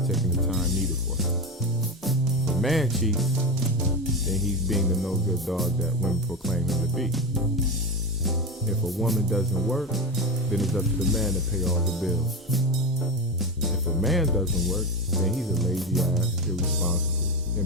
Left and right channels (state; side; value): normal; both; correlation 0.20